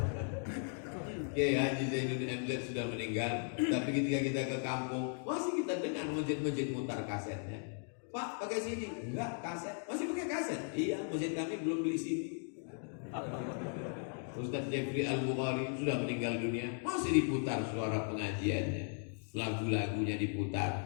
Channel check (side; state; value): right; silent; 53 dB below the other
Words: Oke, Haji Zainuddin MZ sudah meninggal. Tapi ketika kita ke kampung, masih kita dengar masjid-masjid mutar kasetnya. Pak, pakai CD? Enggak, kaset. Masih pakai kaset? Iya, masjid kami belum beli CD. Ustadz Jeffrey Al-Bukhari sudah meninggal dunia, masih diputar suara pengajiannya, lagu-lagunya